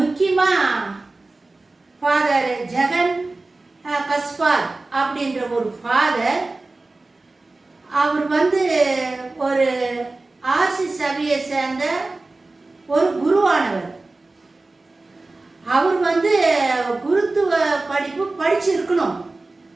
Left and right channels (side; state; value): left; quieter; 3.2 dB